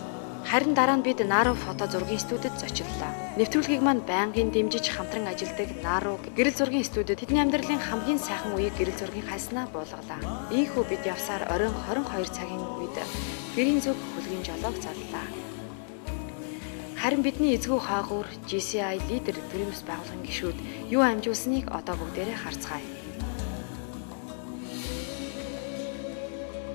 Харин дараа нь бид Нару фото зургийн студид зочлоо. Нэвтрүүлгийг маань байнгын дэмжиж хамтран ажилладаг Нару гэрэл зургийн студид тэдний амьдралын хамгийн сайхан үеийг гэрэл зургийн хайснаа буулгалаа. Ийхүү бид явсаар оройн 22 цагийн үед гэрийн зүг хөлгийн жолоог заллаа. Харин бидний эзгүй хаагуур GCI лидер төрийн бас байгууллагын гишүүд юу амжуулсныг одоо бүгдээрээ харцгаая.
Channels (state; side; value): silent; right; digital silence